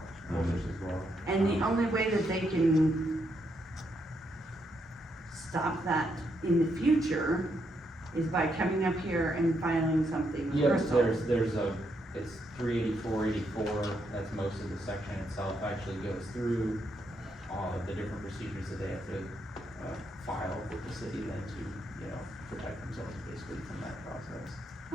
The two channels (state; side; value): normal; both; correlation 0.78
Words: holders as well. And the only way that they can stop that in the future is by coming up here and filing something with Yep, Crystal. there's it's 384, that's most of the section itself, actually goes through all of the different procedures that they have to, file with the city then to, you know, protect themselves basically from that process.